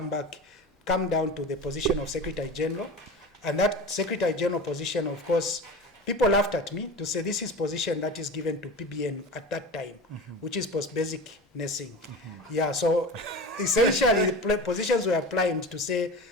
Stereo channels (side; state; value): both; normal; correlation 0.31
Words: come down to the position of Secretary General. And that Secretary General position, of course, people laughed at me to say this is position that is given to PBN at that time, which is post-basic nursing. Yeah, so essentially the positions were applied to say